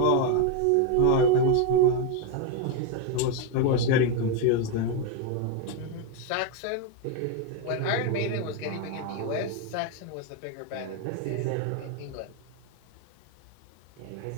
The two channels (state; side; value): different; both; correlation 0.02